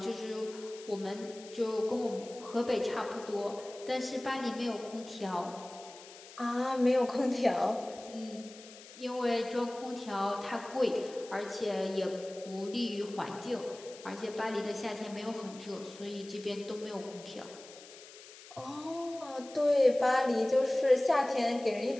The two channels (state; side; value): noise; left; hiss, 18 dB below the sound